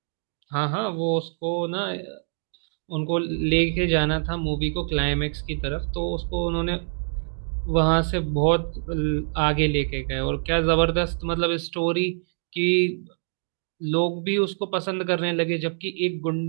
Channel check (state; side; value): silent; left; digital silence